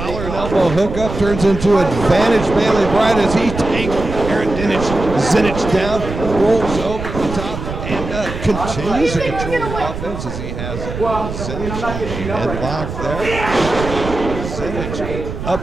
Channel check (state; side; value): noise; right; rumble, 7 dB below the sound